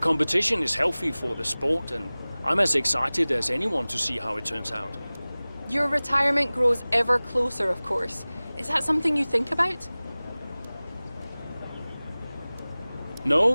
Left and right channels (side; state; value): both; inverted; correlation -0.99